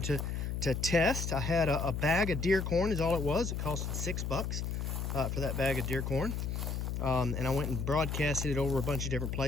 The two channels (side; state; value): left; noise; hum, 2 dB below the sound